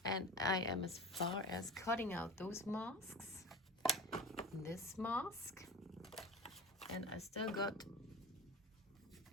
And I am as far as cutting out those masks, this mask, and I still got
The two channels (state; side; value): normal; both; correlation 0.33